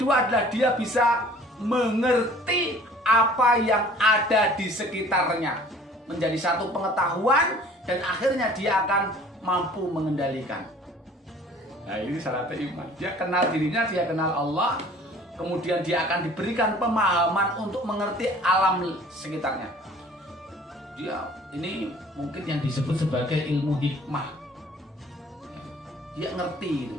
adalah dia bisa mengerti apa yang ada di sekitarnya, menjadi satu pengetahuan, dan akhirnya dia akan mampu mengendalikan. Nah, ini syaratnya iman. Dia kenal dirinya, dia kenal Allah, kemudian dia akan diberikan pemahaman untuk mengerti alam sekitarnya. Ini mungkin yang disebut sebagai ilmu hikmah. Dia ngerti,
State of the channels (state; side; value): normal; both; correlation 0.50